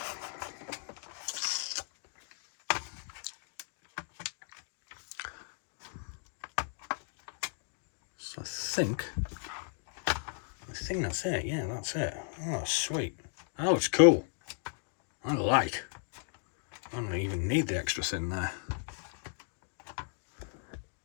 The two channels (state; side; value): silent; right; 54 dB below the other